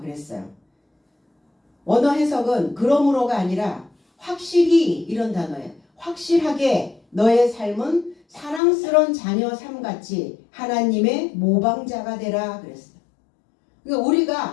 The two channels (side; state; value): right; drops out; at 8.6 s